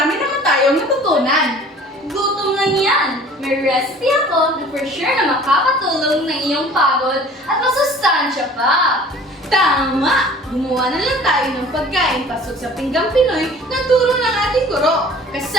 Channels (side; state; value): both; normal; correlation 0.47